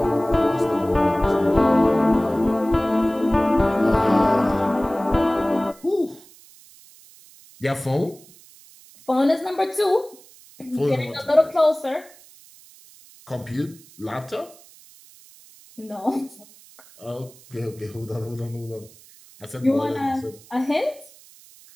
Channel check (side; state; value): right; noise; hiss, 24 dB below the sound